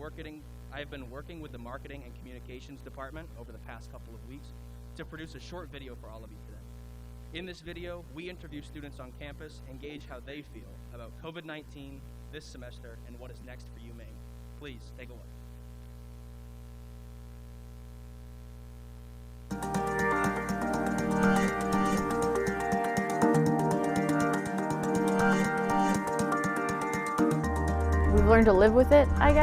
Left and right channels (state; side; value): identical; both; correlation 1.00